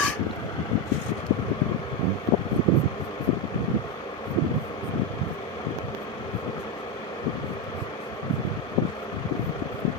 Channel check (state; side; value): normal; both; correlation 0.10